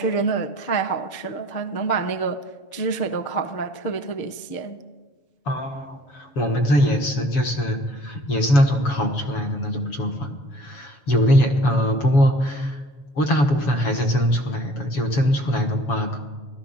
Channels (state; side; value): late; right; 7.1 ms